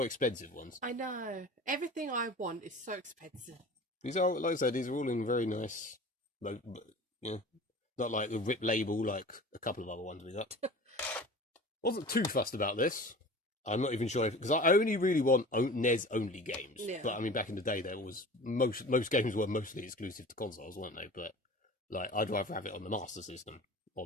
expensive ones. I know. Everything I want is so expensive. These are, like I said, these are all in very nice, like, you know, not like the RIP label like a couple of other ones we got. Wasn't too fussed about this. I'm not even sure because I only really want NES only games. Yeah. But I mean, back in the day, there was most games were mostly exclusive to consoles, weren't they? But like, I'd rather have it on the Master System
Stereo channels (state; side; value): normal; both; correlation 0.39